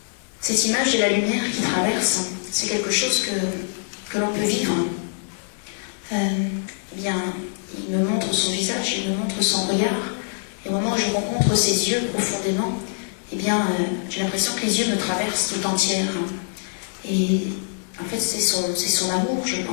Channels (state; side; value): silent; right; digital silence